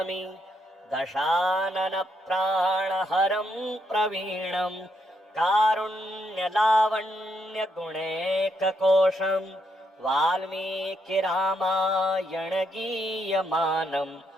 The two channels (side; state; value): both; normal; correlation 0.77